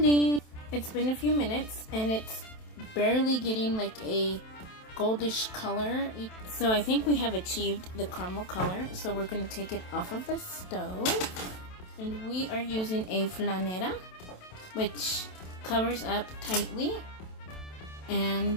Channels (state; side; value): late; right; 27 ms